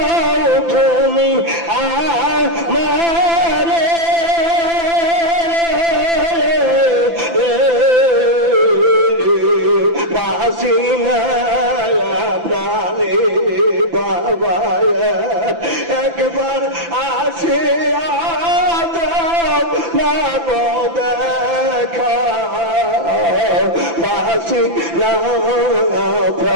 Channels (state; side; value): late; left; 5.9 ms